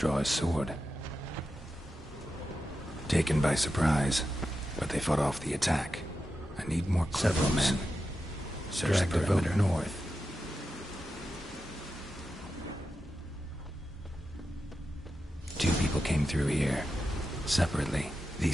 his sword. Taken by surprise, but they fought off the attack. I need more several men. Search the perimeter north. Two people came through here, separately.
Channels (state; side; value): normal; both; correlation 0.90